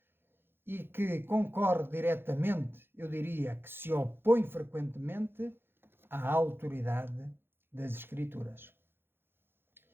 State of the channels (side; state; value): left; late; 0.10 ms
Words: e que concorre diretamente, eu diria que se opõe frequentemente à autoridade das Escrituras.